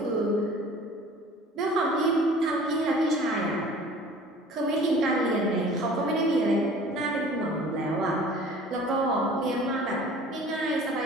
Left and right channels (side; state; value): both; normal; correlation 0.46